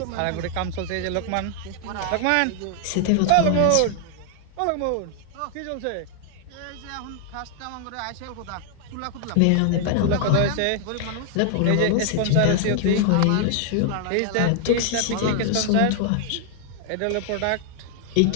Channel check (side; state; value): both; different; correlation 0.00